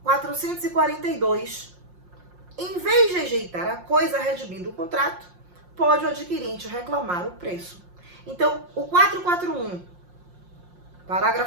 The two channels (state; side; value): late; left; 5.6 ms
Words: 442. Em vez de rejeitar a coisa redimindo o contrato, pode o adquirente reclamar o preço. Então, o 441,